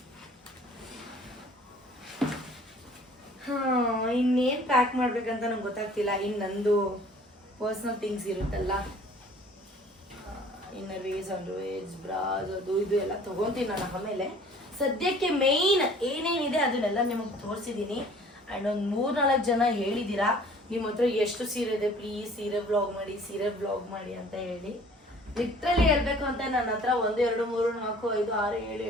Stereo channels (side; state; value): both; normal; correlation 0.52